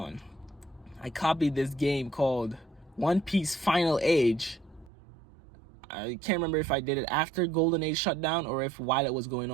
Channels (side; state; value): left; drops out; at 4.9 s